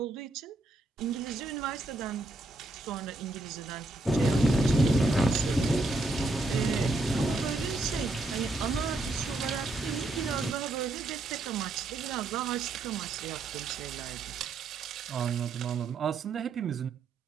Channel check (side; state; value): left; quieter; 3.0 dB